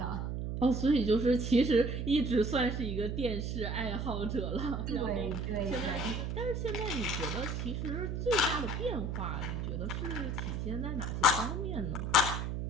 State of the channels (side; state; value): right; noise; hum, 2 dB below the sound